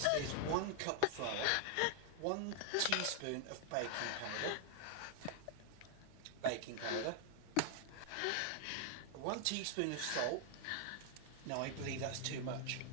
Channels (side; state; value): both; different; correlation 0.00